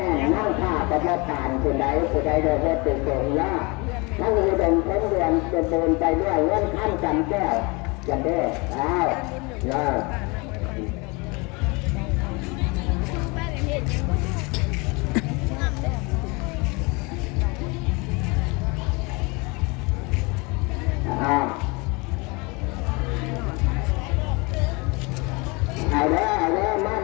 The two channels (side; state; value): right; quieter; 27.8 dB